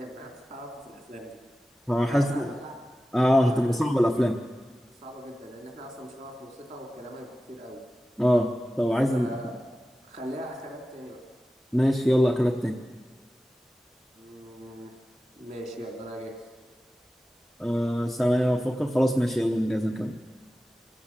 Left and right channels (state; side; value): normal; both; correlation 0.94